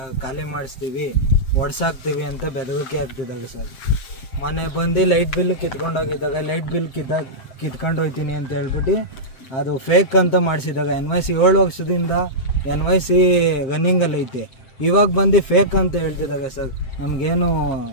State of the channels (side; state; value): right; late; 7.6 ms